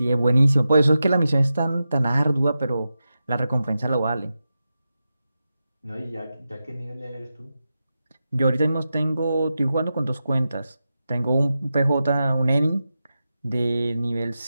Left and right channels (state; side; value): inverted; both; correlation -0.91